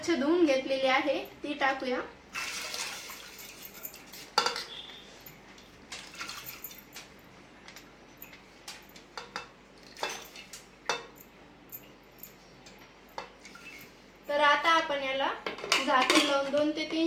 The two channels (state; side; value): identical; both; correlation 1.00